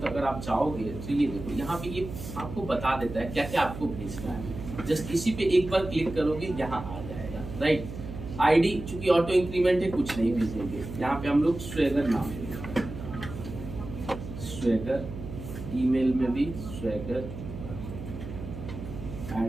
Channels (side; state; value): right; noise; hum, 10 dB below the sound